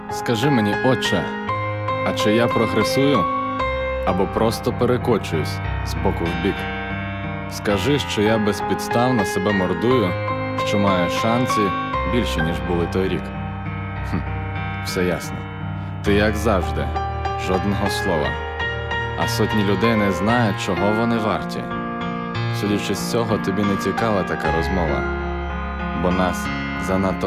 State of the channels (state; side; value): identical; both; correlation 1.00